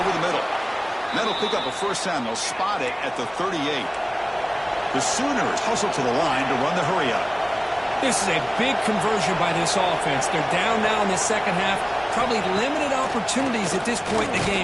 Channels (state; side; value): identical; both; correlation 1.00